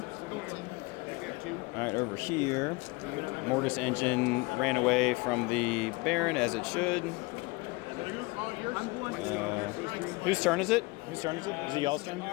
All right, over here, Mortis engine ran away from the Baron as it should. Whose turn is it? Whose turn is it? Is it y'all's turn?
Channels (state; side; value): quieter; right; 24.9 dB